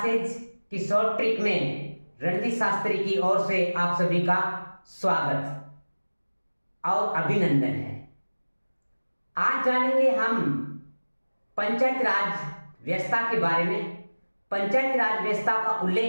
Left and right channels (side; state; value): both; inverted; correlation -1.00